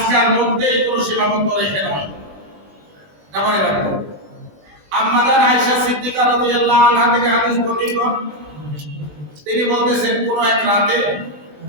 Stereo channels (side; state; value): left; late; 20 ms